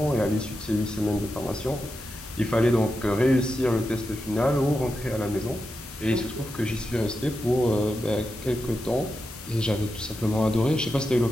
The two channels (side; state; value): both; normal; correlation 0.89